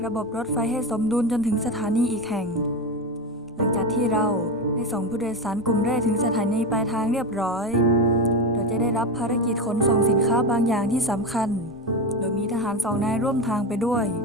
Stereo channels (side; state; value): both; normal; correlation 0.18